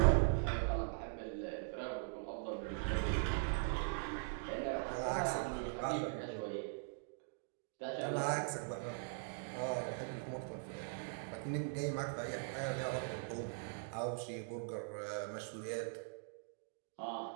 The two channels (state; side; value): silent; left; digital silence